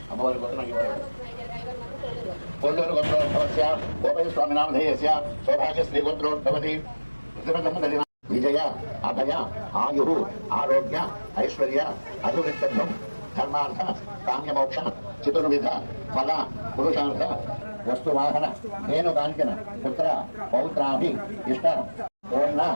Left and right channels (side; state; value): both; inverted; correlation -1.00